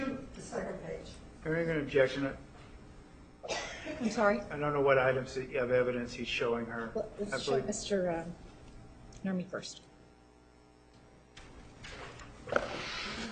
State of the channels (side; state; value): both; identical; correlation 1.00